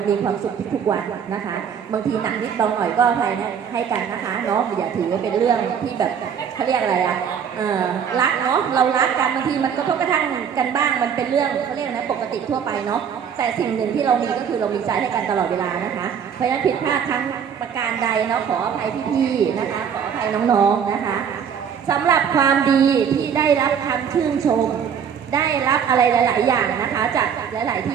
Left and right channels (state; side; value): quieter; left; 7.7 dB